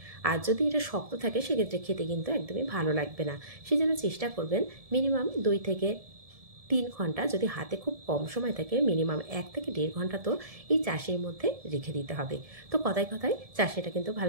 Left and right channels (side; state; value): left; late; 1.7 ms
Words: আর যদি এটা শক্ত থাকে সেক্ষেত্রে খেতে কিন্তু একদমই ভালো লাগবে না। সেই জন্য চেষ্টা করবেন মিনিমাম 2 থেকে 3 ঘন্টা, যদি হাতে খুব কম সময় থাকে মিনিমাম 1 থেকে 1.5 ঘন্টা তো এই চাশনির মধ্যে রেখে দিতে হবে। তো কথায় কথায় চাশনিটা কিন্তু